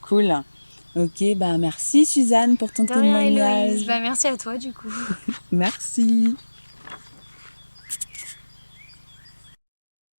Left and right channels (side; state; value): both; inverted; correlation -1.00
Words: Cool. Ok, bah merci Suzanne pour ton De rien Héloïse. témoignage. Bah merci à toi du coup. Merci.